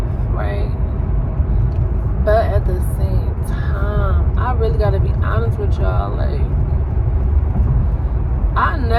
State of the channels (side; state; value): both; identical; correlation 1.00